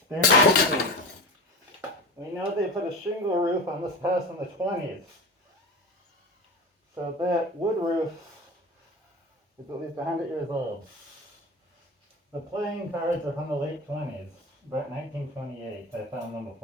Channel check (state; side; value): normal; both; correlation 0.29